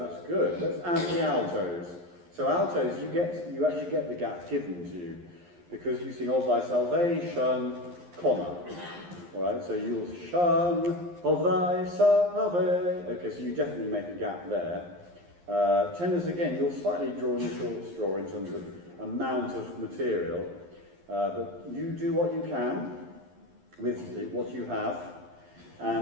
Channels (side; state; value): left; late; 11 ms